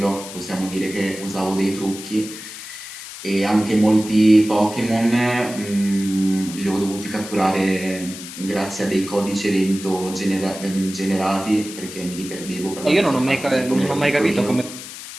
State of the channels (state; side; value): noise; left; hiss, 12 dB below the sound